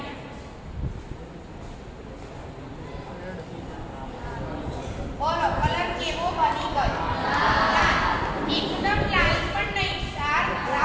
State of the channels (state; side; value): identical; both; correlation 1.00